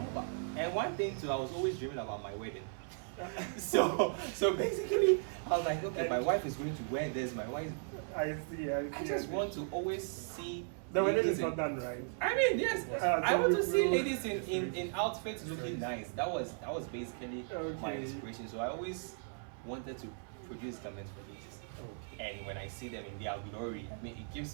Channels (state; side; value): silent; left; 53 dB below the other